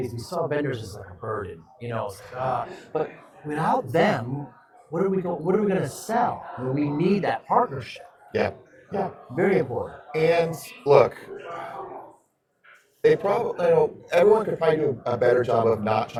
We saw vendors as like a burden, it's like, but without them, what are we going to sell? I mean, we need that partnership. Yeah. Yeah. Very important. And look, they probably, everyone could probably do a better job of not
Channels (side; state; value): both; identical; correlation 1.00